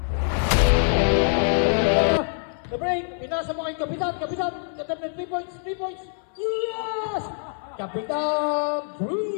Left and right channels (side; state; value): right; silent; 59 dB below the other